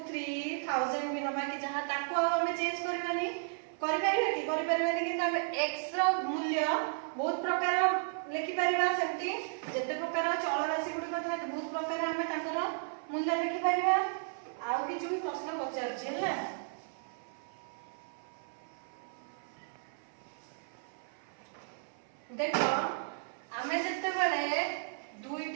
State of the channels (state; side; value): silent; left; 55 dB below the other